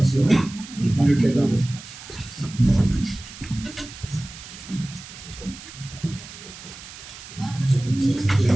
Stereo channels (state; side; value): noise; right; hiss, 15 dB below the sound